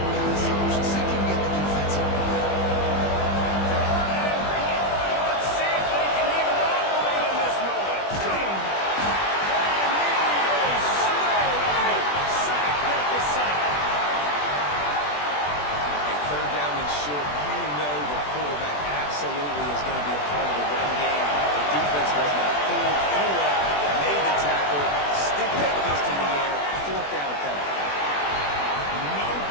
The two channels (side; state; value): right; late; 20 ms